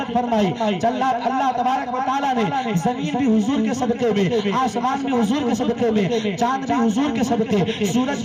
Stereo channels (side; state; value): both; identical; correlation 1.00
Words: فرمائی. اللہ تبارک و تعالیٰ نے زمین بھی حضور کے صدقے میں، آسمان بھی حضور کے صدقے میں، چاند بھی حضور کے صدقے،